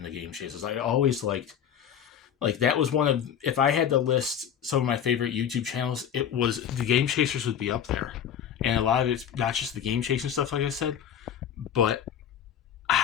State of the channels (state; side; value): quieter; right; 9.0 dB